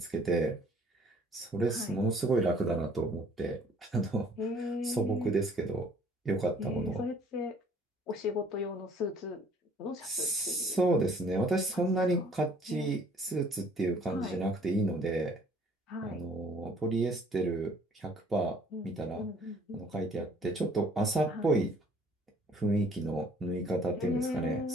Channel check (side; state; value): both; normal; correlation 0.58